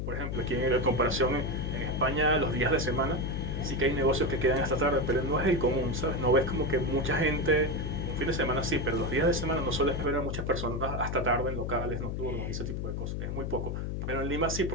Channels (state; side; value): noise; left; hum, 3 dB below the sound